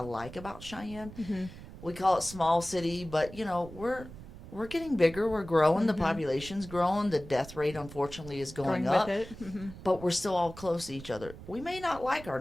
like about Cheyenne. We call it small city, but we're getting bigger. We're growing. The population's growing. The death rate, unfortunately, is going up. with it. But we're still all close to each other. We may not like our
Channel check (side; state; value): right; noise; rumble, 15 dB below the sound